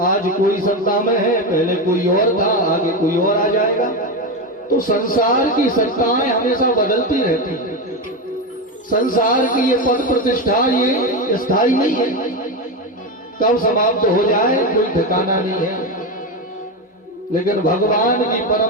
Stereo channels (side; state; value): both; normal; correlation 0.14